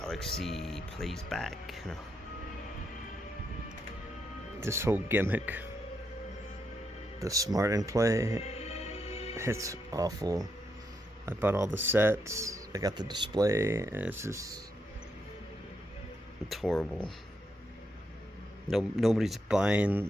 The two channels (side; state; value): both; normal; correlation 0.80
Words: plays back. No. This whole gimmick, the smart and play, it's awful. I bought all the sets. I got the display, and it's horrible. Nobody's buying